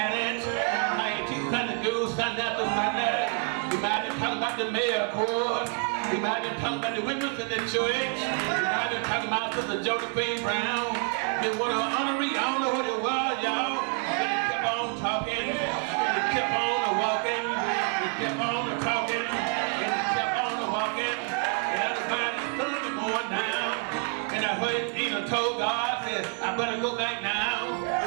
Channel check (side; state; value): left; quieter; 37.7 dB